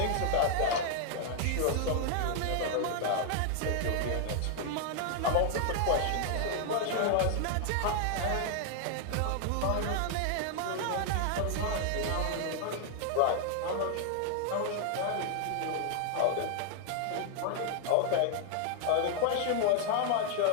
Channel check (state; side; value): different; both; correlation 0.00